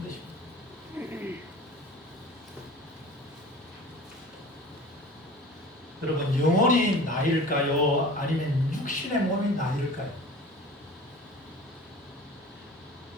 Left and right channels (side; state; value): both; normal; correlation 0.41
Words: 것입니다. 여러분, 영혼이 나일까요? 아니면 육신의 몸이 나일까요?